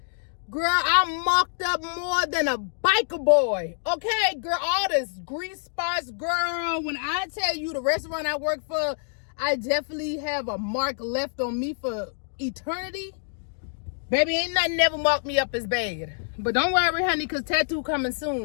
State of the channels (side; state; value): right; silent; digital silence